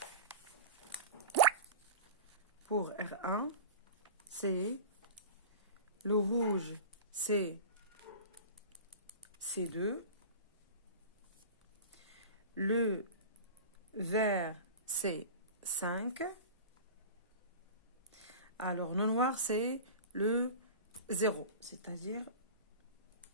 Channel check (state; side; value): inverted; both; correlation -0.33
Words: c'est le rouge, c'est C2, le vert, c'est 5. Alors, le noir, c'est le 0, c'est-à-dire